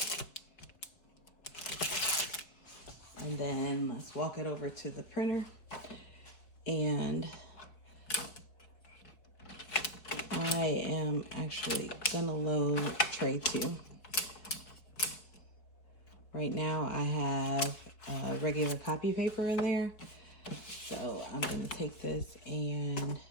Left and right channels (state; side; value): late; right; 4.7 ms